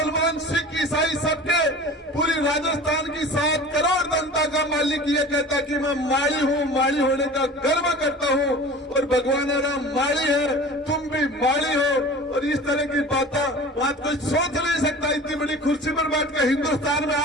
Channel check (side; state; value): both; normal; correlation 0.39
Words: सिख ईसाई सबके पूरी राजस्थान की 7 करोड़ जनता का मालिक ये कहता कि मैं माड़ी हूं, माड़ी होने का गर्व करता हूं और भगवान राम माड़ी है, तुम भी माड़ी हो। और इस तरह की बात कोई सोच नहीं सकता। इतनी बड़ी कुर्सी पर बैठ कर हिंदुस्तान में